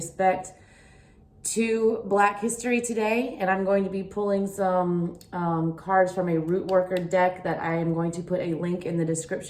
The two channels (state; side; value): identical; both; correlation 1.00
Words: to Black history today. And I'm going to be pulling some cards from a root worker deck that I am going to put a link in the